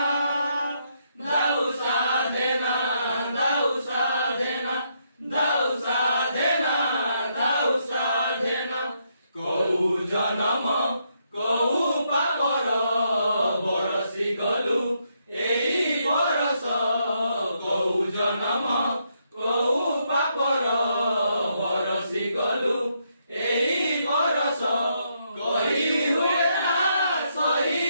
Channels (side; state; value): both; inverted; correlation -0.77